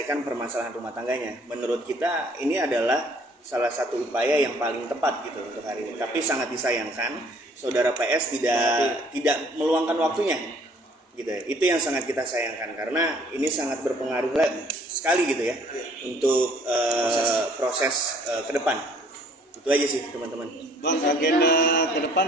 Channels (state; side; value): normal; both; correlation 0.59